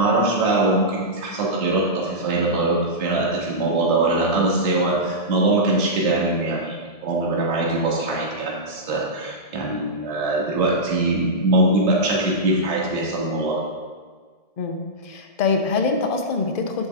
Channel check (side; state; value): right; late; 1.7 ms